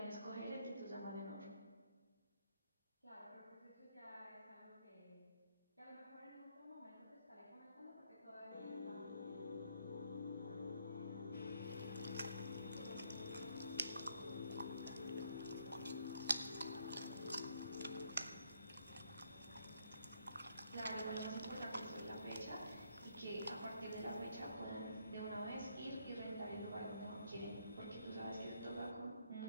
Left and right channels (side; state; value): both; inverted; correlation -0.71